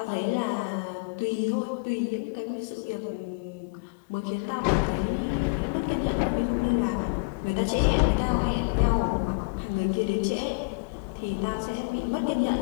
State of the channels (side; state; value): right; quieter; 34.4 dB